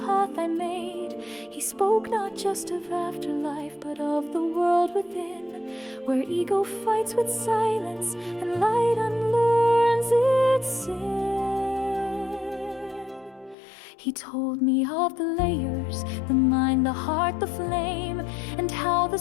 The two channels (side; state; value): right; drops out; at 13.6 s